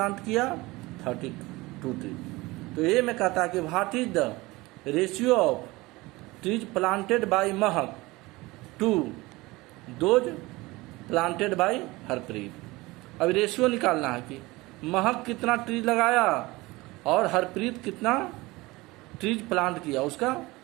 किया, 32 ट्रीज। तो ये मैं कहता कि what is the ratio of trees planted by Mehak to those planted by Harpreet. अब रेशियो निकालना है कि महक कितना ट्रीज लगाया और हरप्रीत कितना ट्रीज प्लांट किया, उसका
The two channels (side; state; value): left; quieter; 21.4 dB